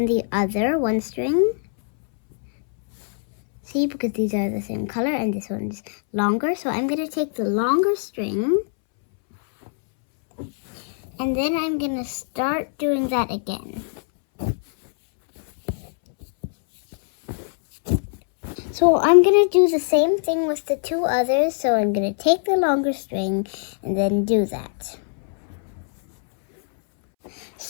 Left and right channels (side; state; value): right; silent; 64 dB below the other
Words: the other, one string. See, because these are the same color and this one's longer. So I'm going to take the longer string, and then I'm going to start doing that again. So I'm going to do the same thing with the 2 others. So I'm going to take the longer string and then do that.